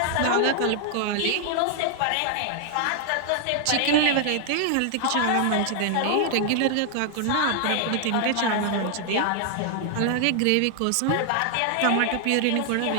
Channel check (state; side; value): different; both; correlation 0.00